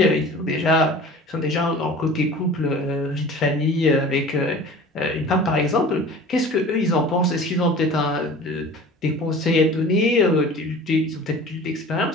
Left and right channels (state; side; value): normal; both; correlation 0.42